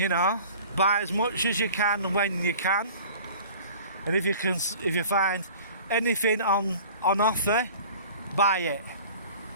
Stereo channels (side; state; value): both; inverted; correlation -0.44